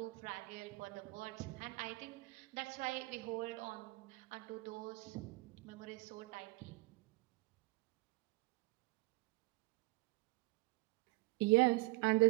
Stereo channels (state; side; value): quieter; left; 24.2 dB